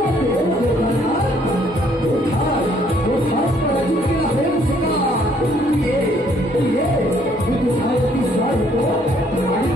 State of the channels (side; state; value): both; normal; correlation 0.65